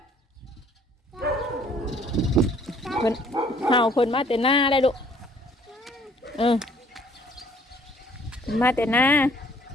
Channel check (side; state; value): both; normal; correlation 0.58